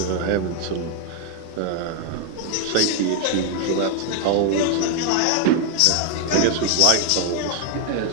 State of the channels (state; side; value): different; both; correlation 0.00